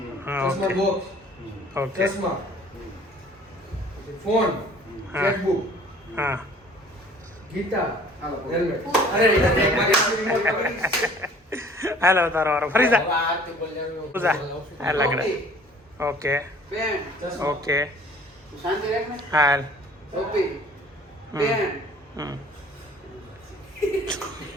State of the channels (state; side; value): normal; both; correlation 0.51